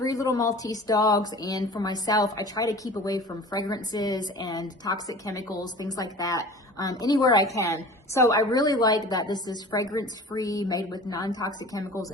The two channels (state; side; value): normal; both; correlation 0.40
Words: little Maltese dogs, and for myself, I try to keep away from fragrances and toxic chemicals, things like that, anywhere I can. So I really like that this is fragrance-free, made with non-toxic chemicals,